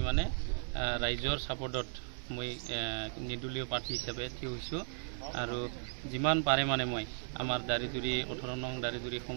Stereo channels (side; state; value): left; silent; digital silence